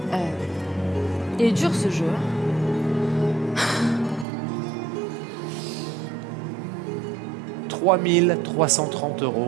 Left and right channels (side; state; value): left; drops out; at 4.2 s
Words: il est dur ce jeu. 3 330 €